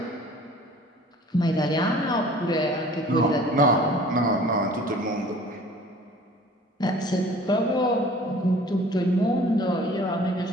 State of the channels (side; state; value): both; normal; correlation 0.49